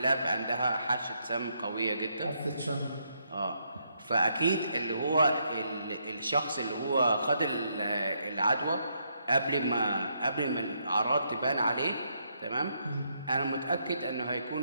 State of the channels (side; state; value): both; inverted; correlation -0.76